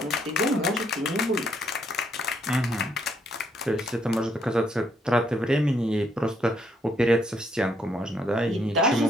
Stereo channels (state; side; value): normal; both; correlation 0.72